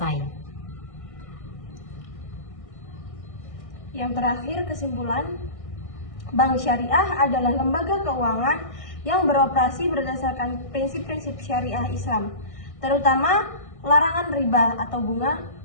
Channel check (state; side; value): late; right; 1.6 ms